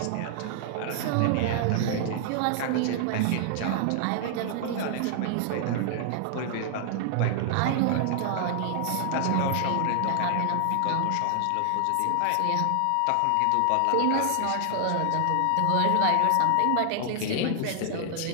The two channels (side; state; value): both; different; correlation 0.00